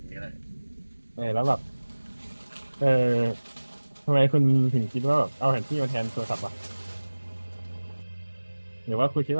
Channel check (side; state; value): both; inverted; correlation -1.00